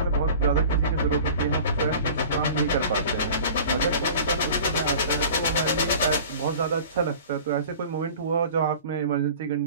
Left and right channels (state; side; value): inverted; both; correlation -0.42